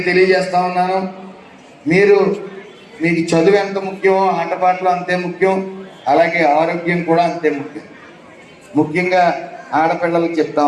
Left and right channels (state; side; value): identical; both; correlation 1.00